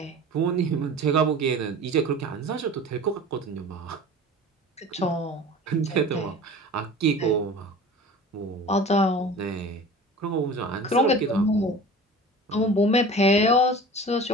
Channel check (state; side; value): normal; both; correlation 0.39